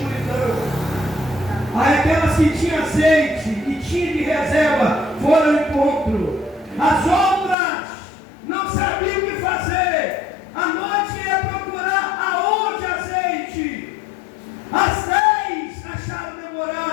Aí aquelas que tinham azeite e tinham de reserva foram ao encontro. As outras não sabiam o que fazer. A noite ia procurar aonde azeite. As 10 acharam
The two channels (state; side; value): drops out; right; at 7.6 s